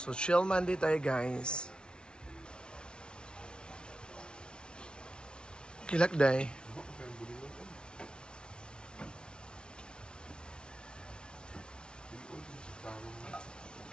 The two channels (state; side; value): late; right; 0.056 ms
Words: chill Monday tayo guys. Kilak day.